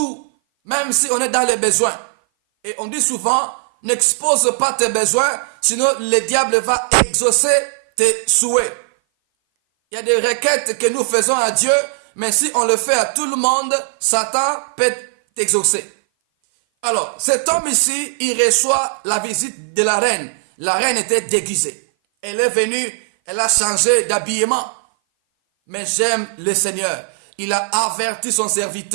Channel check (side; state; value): left; silent; 58 dB below the other